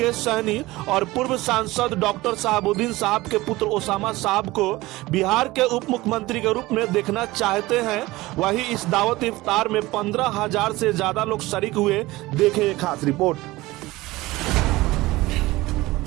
सहनी और पूर्व सांसद डॉक्टर शहाबुद्दीन साहब के पुत्र ओसामा साहब को बिहार के उप मुख्यमंत्री के रूप में देखना चाहते हैं। वही इस दावत इफ्तार में 15,000 से ज्यादा लोग शरीक हुए। देखें एक खास रिपोर्ट।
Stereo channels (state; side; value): quieter; left; 19.4 dB